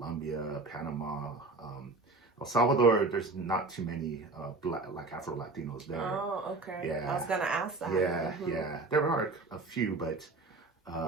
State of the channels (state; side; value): quieter; left; 3.4 dB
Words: Panama. El Salvador, there's not too many like Afro Latinos there. Oh, okay. Yeah. I was gonna ask that. Yeah, Mhm. yeah. There are a few, but